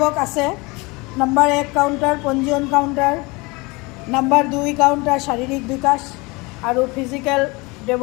আছে। নম্বৰ 1 কাউণ্টাৰ পঞ্জীয়ন কাউণ্টাৰ, নম্বৰ 2 কাউণ্টাৰ শাৰীৰিক বিকাশ আৰু ফিজিকেল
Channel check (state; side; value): quieter; right; 25.5 dB